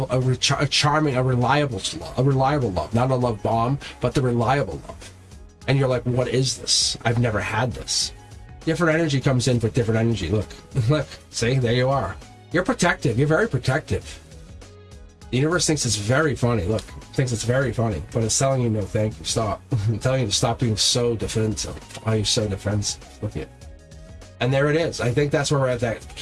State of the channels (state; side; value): identical; both; correlation 1.00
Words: charming, a reliable love. Not a love bomb, but the reliable love. And you're like, what is this? I've never had this. Different energy comes in with different energy. Look, see, there you are. You're protective. You're very protective. The universe thinks it's very funny. Look, thinks it's very funny, but it's telling you no, thank you, stop. I'm telling you to stop being so defensive. Why are you so defensive? Look at it. And there it is. I think that's where we're at, that